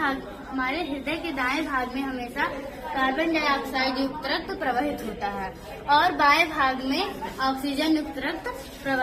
हमारे हृदय के दाएं भाग में हमेशा कार्बन डाइऑक्साइड युक्त रक्त प्रवाहित होता है और बाएं भाग में ऑक्सीजन युक्त रक्त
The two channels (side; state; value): both; identical; correlation 1.00